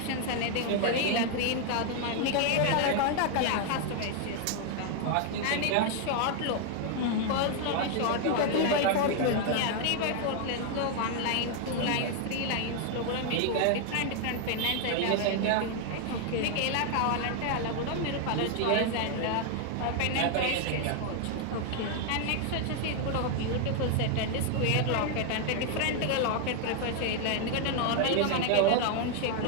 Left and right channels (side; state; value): both; different; correlation 0.01